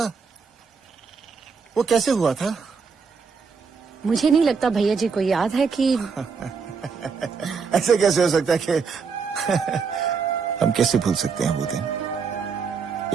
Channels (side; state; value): left; quieter; 5.5 dB